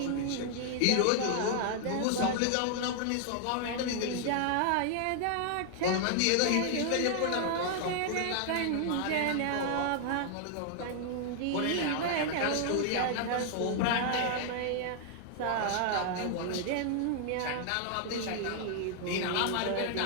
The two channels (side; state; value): both; different; correlation 0.00